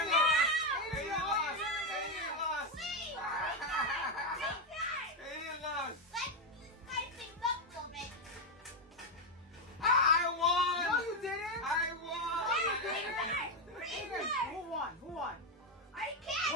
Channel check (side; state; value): both; normal; correlation 0.05